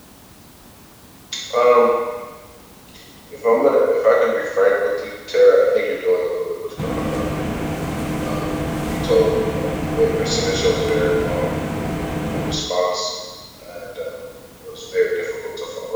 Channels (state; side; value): identical; both; correlation 1.00